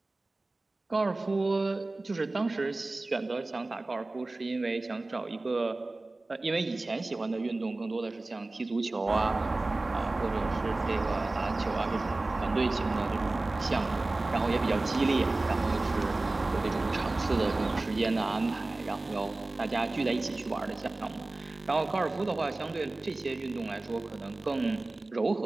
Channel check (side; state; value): left; quieter; 3.0 dB